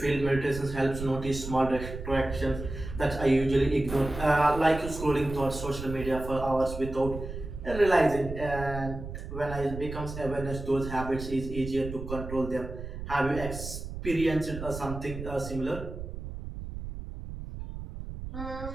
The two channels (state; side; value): noise; right; rumble, 9 dB below the sound